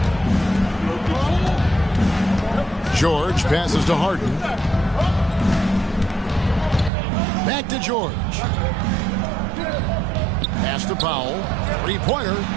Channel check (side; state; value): left; drops out; at 6.9 s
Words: George passes to Harden. Back to George. Pass to Powell. 3-pointer.